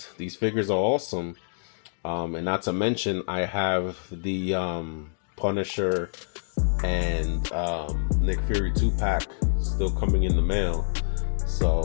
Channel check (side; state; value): right; silent; digital silence